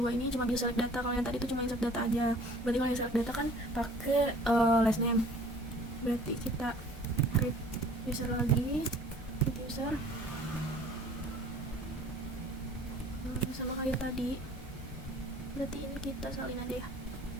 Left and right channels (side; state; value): both; normal; correlation 0.50